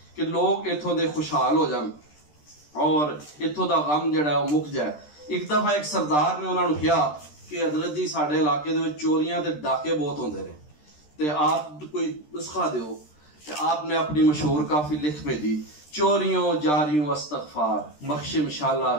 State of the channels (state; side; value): late; right; 13 ms